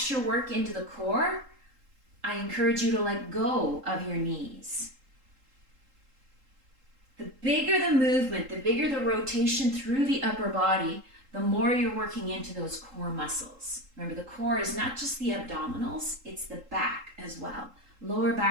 work into the core, I encourage you to let go of your knees. The bigger the movement, the bigger the rotation through the upper body, the more you're working into those core muscles. Remember, the core is not just the abdominals, it's the back as well. Lower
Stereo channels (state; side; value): late; left; 3.8 ms